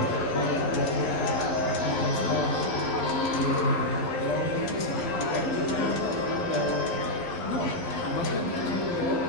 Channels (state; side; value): late; right; 11 ms